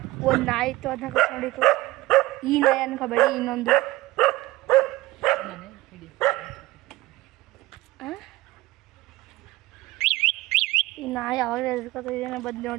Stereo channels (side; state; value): left; quieter; 19.0 dB